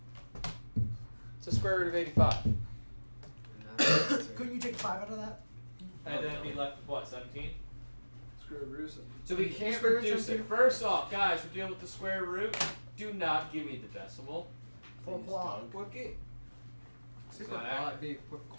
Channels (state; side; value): inverted; both; correlation -1.00